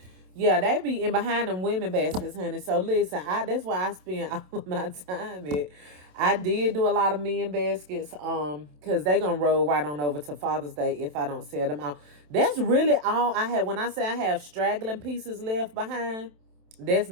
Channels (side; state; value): left; late; 27 ms